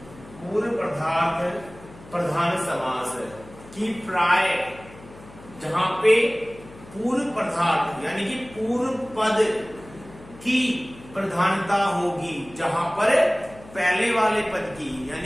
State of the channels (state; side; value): noise; left; hum, 20 dB below the sound